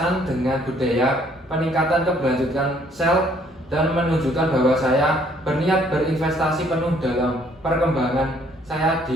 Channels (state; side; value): normal; both; correlation 0.63